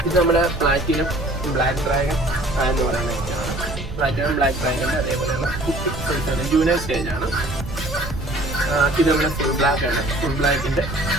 ഇത് നമ്മുടെ പ്ലാറ്റിനം ബ്ലാക്ക് ഡ്രാഗൺ എന്ന് പറയുന്ന ഐറ്റമാണ്. പ്ലാറ്റിനം ബ്ലാക്ക് ഡ്രാഗൺ അതേപോലെയുള്ള കുട്ടി സൈസാണ്, ജൂനിയർ സ്റ്റേജാണ്. ഇത് നമ്മുടെ ഫുൾ ബ്ലാക്ക് ആണ്. ഫുൾ ബ്ലാക്കിന്റെ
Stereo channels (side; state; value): right; noise; rumble, 10 dB below the sound